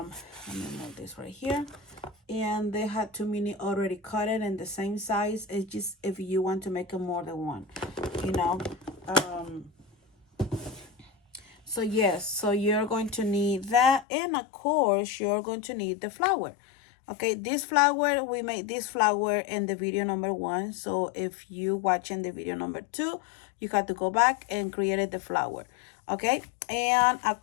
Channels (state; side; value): drops out; right; at 14.1 s